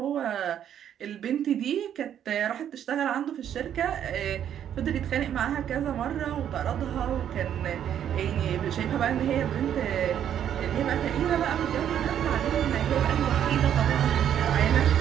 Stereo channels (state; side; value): quieter; left; 9.8 dB